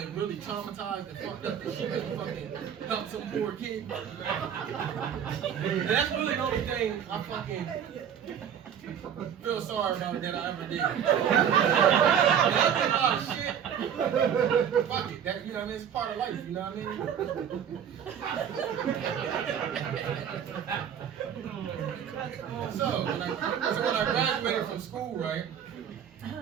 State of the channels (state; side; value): quieter; left; 8.6 dB